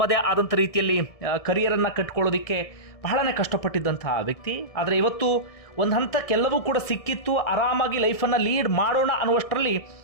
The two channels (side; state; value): right; late; 1.6 ms